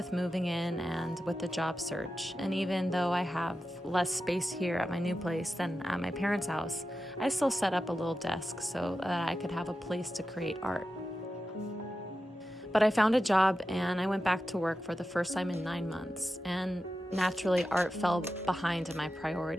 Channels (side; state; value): both; normal; correlation 0.91